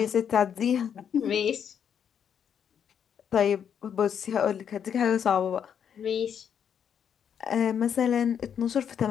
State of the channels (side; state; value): right; quieter; 8.2 dB